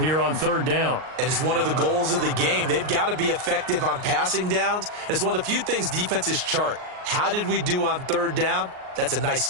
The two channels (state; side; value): late; left; 38 ms